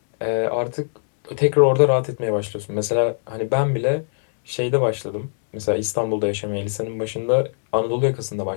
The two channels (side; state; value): right; silent; 65 dB below the other